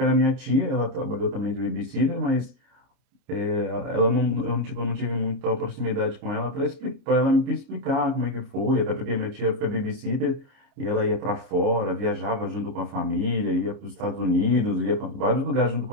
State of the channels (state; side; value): late; left; 29 ms